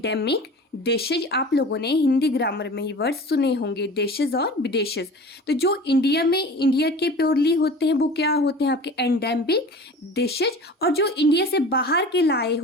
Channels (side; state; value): both; normal; correlation 0.39